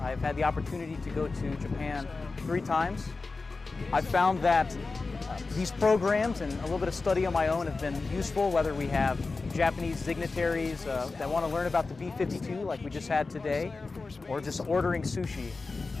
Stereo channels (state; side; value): quieter; right; 3.9 dB